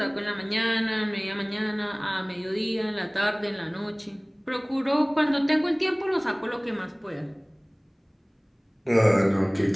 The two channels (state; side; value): identical; both; correlation 1.00